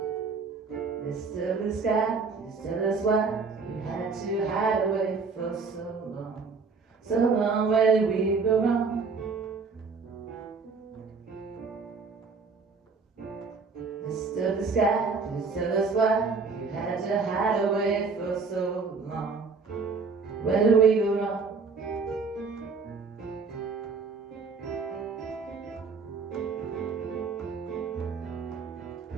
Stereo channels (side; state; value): left; quieter; 4.7 dB